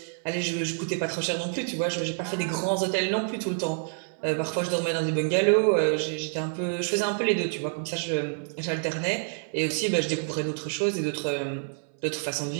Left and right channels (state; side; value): silent; left; 60 dB below the other